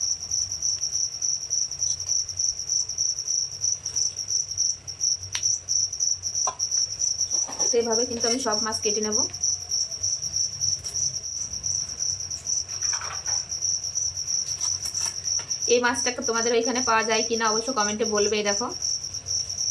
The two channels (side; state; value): both; identical; correlation 1.00